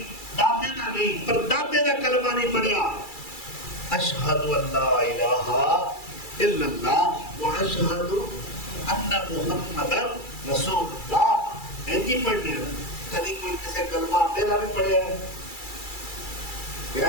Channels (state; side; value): late; right; 2.3 ms